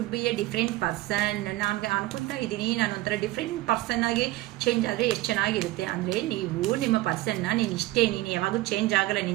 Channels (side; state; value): left; quieter; 17.7 dB